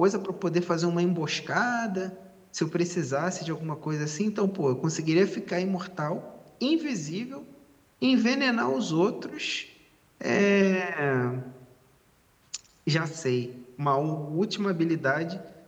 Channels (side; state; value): both; identical; correlation 1.00